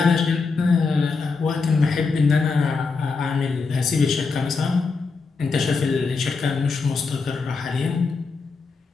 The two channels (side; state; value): right; quieter; 4.5 dB